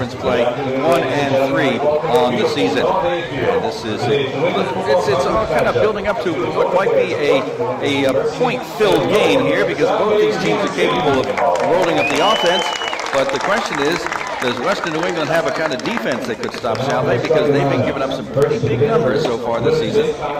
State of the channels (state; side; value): identical; both; correlation 1.00